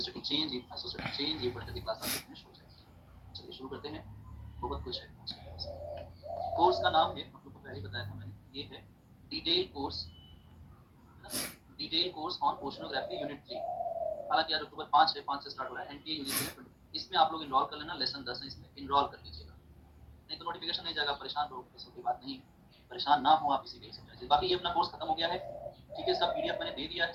चेंज, आइसोस्टेटिक चेंज, ये बढ़ते क्लास में फिनिश हो जाएगी। चलिए शुरू करते हैं। बहुत कुछ है। कोर्स का नाम है, आप लोग को पहले बताया था मैंने, ये है detail course, detail course on oceanography unit 3। हालांकि आज अक्टूबर 5 है, 5 से स्टार्ट हो रहा है। एनटीए यूजीसी ने इसमें आप लोग इनरोल कर लेना। लेसन 10 है, इसमें इनरोल कर लीजिएगा, नहीं तो नोटिफिकेशन नहीं जाएगा, परेशान रहो, ऐसा कोई बात नहीं है। परेशान ना हो आप इसी के समझ। बाकी ये अपना कोर्स खत्म हो गया है। ठीक है, इसका पीडीएफ मैंने दे दिया है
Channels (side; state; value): both; identical; correlation 1.00